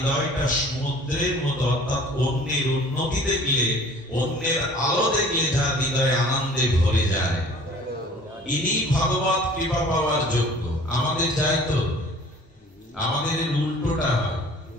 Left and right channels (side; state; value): both; normal; correlation 0.50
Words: সমুদ্রের মতো, অর্থাৎ অন্যের উন্নতি দেখলে, অন্যের আলো দেখলে যার হৃদয়ে আনন্দে ভরে যায়, ইনি ভগবত কৃপা পাওয়ার যোগ্য। আমাদের যাই তো, আমাদের উল্টোটা হয়।